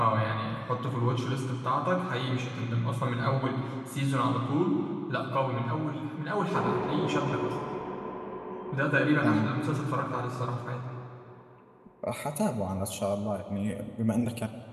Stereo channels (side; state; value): both; identical; correlation 1.00